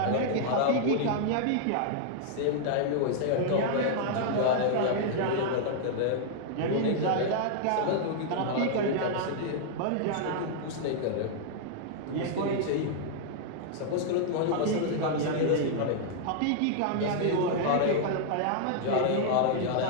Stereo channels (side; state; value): both; different; correlation -0.01